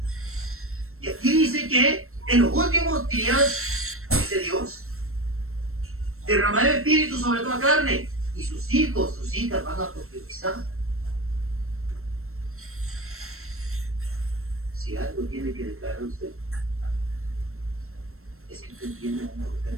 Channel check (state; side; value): late; left; 0.62 ms